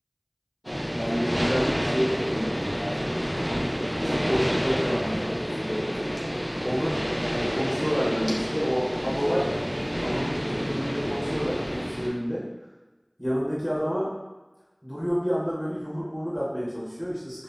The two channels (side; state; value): both; identical; correlation 1.00